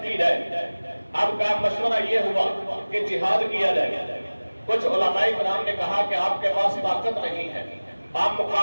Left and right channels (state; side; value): inverted; both; correlation -1.00